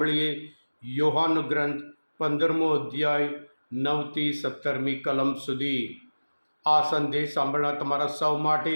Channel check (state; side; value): inverted; both; correlation -1.00